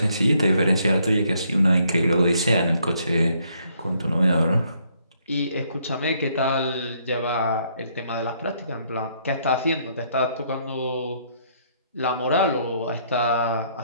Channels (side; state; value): both; inverted; correlation -0.69